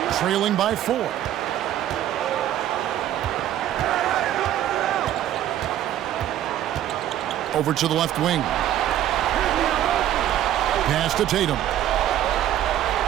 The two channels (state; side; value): quieter; left; 12.0 dB